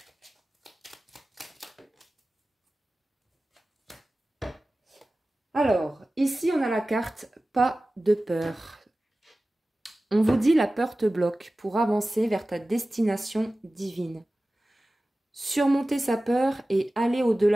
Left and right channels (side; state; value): both; normal; correlation 0.96